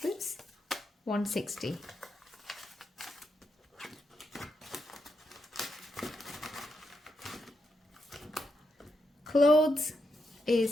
Oops, 160. Clothes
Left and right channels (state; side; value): normal; both; correlation 0.83